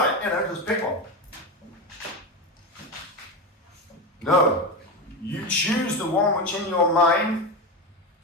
You know, just pick one. No, you choose the one which in your mind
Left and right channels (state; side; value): normal; both; correlation 0.18